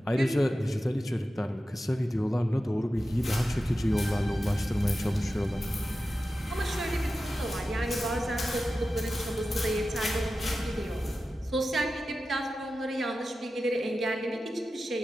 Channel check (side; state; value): both; normal; correlation 0.93